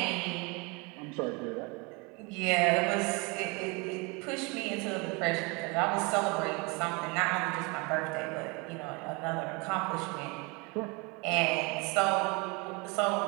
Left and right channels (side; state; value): left; quieter; 28.8 dB